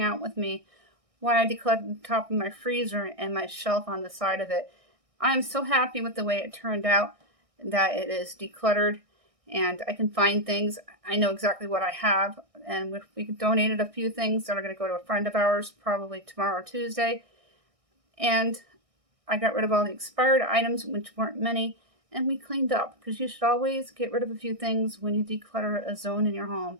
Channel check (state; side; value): late; left; 1.6 ms